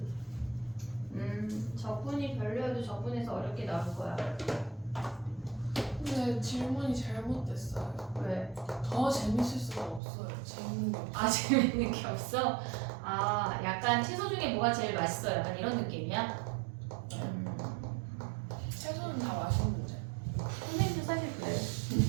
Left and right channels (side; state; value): left; drops out; at 10.0 s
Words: 적분이 별로여도 적분에서 어렵게 나올 거야. 근데 질문이 잘못됐어요. 왜? 더 재밌을 수가 없어요. 재밌는 게 없어요. 아 재밌는 게 없어? 아 약간 채소 중에 뭐가 제일 맛있어? 약간 이런 느낌이야? 채소는 다 맛있는데. 선생님도 사실 그래.